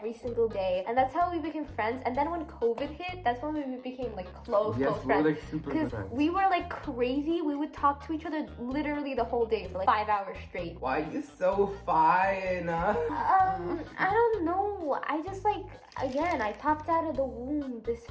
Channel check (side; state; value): both; identical; correlation 1.00